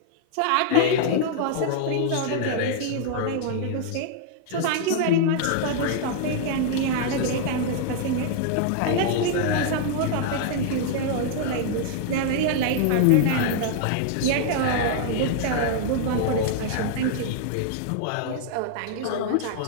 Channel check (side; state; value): both; different; correlation -0.01